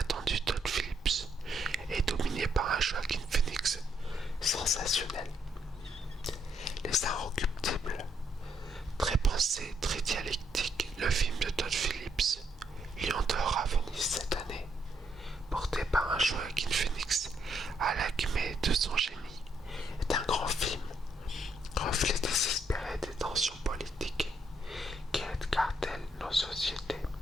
Todd Phillips et dominé par un Joaquin Phoenix sensationnel. Les Inrecuptibles, très pensé, très dialectique, le film de Todd Phillips, Lion d'or à Venise cette année, porté par un Joaquin Phoenix à l'acmé de son génie, est un grand film, reflet désespéré des tensions politiques qui cartellent nos sociétés.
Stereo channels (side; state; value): both; normal; correlation 0.74